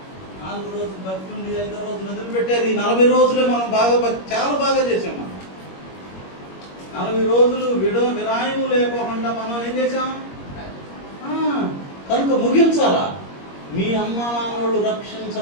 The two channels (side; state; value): right; late; 21 ms